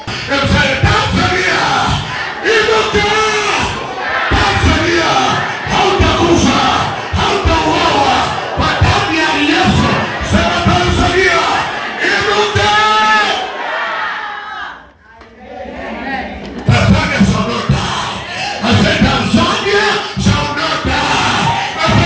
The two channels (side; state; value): both; identical; correlation 1.00